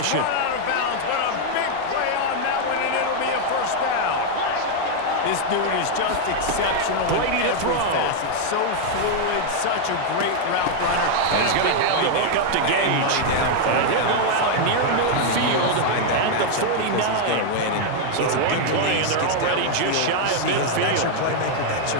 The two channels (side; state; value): both; different; correlation 0.00